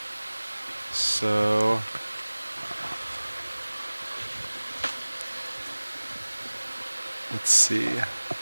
So let's see.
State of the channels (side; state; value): both; inverted; correlation -1.00